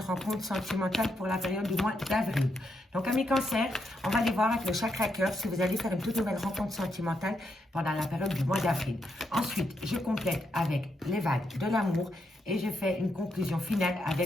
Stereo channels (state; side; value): normal; both; correlation 0.81